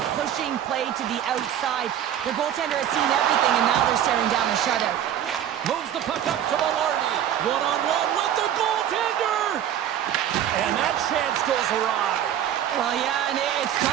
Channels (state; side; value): quieter; left; 10.4 dB